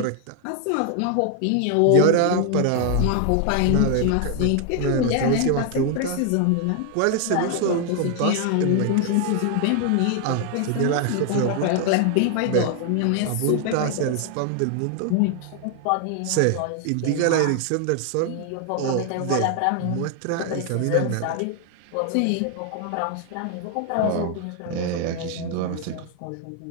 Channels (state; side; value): different; both; correlation 0.00